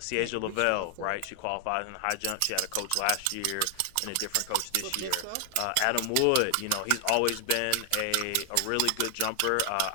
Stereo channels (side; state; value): both; different; correlation 0.00